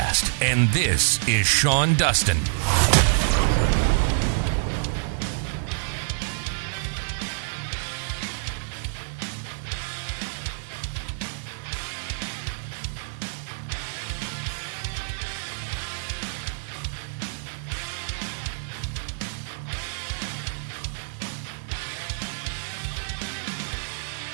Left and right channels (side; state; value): left; silent; digital silence